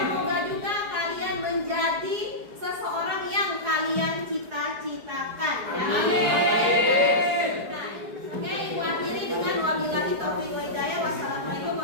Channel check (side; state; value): left; late; 4.8 ms